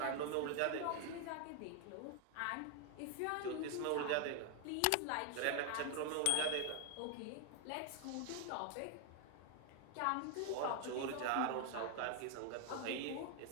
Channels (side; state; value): both; different; correlation 0.00